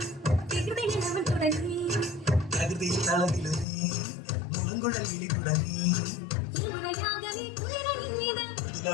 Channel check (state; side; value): drops out; right; at 3.7 s